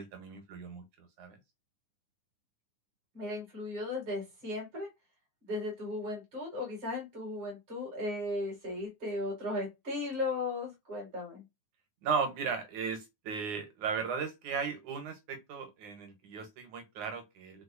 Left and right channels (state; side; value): late; left; 9.7 ms